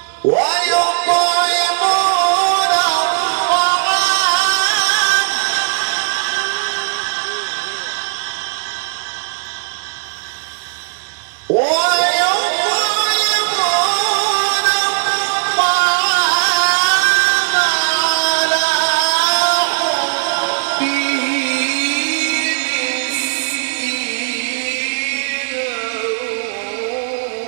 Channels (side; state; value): left; silent; 67 dB below the other